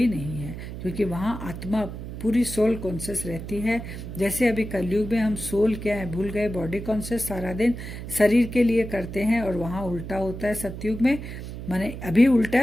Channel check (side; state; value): right; noise; hum, 9 dB below the sound